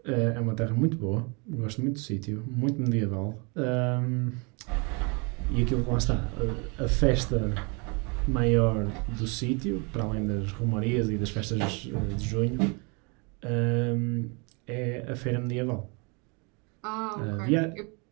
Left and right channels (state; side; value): quieter; left; 32.2 dB